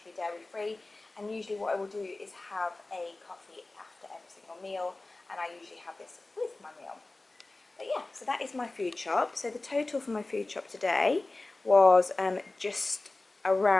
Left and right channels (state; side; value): quieter; right; 3.1 dB